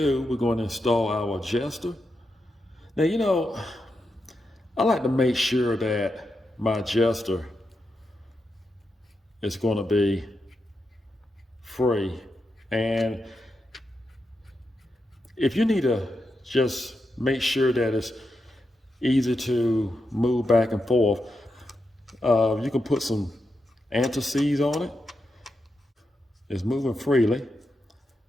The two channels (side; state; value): both; normal; correlation 0.86